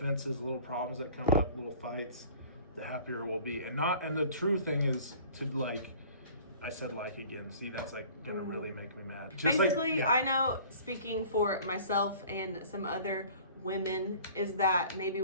little problems that come up, little fights, the happier we'll be. And the true thing is to like, I said like again. See, that's like gonna really make me mad. Just Basically, like, I know, speaking for myself and some other women, is that maybe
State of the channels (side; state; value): both; inverted; correlation -0.48